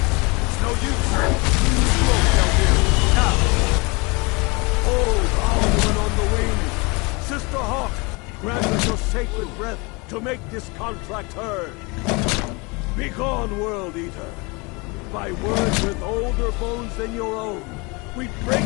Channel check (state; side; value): quieter; right; 27.9 dB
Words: It's no use. Slow, Feldir. Now. Hold Alduin on the wing! Sister Hawk, grant us your sacred breath to make this contract heard. Begone, World Eater! By words with older bones than your own, we break